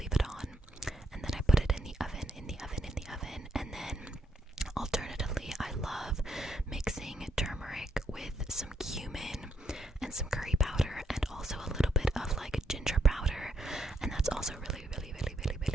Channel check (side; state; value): both; normal; correlation 0.76